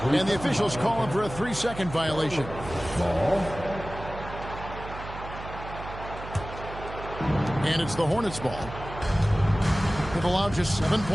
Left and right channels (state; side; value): noise; right; hum, 11 dB below the sound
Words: And the officials call him for a 3-second violation. And it's the Hornets' ball. They've allowed just 7